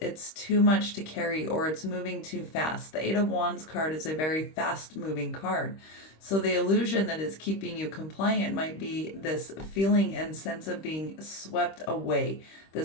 too much to carry, or it's moving too fast. The Eight of Wands card is a very fast moving card. So the illusion that is keeping you compliant might be this feeling and sense of being swept away,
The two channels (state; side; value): late; right; 26 ms